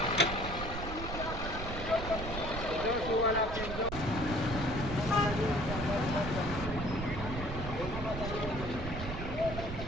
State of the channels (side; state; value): right; noise; rumble, 6 dB below the sound